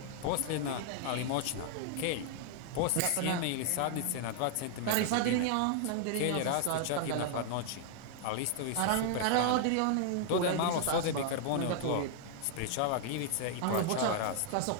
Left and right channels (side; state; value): both; different; correlation 0.00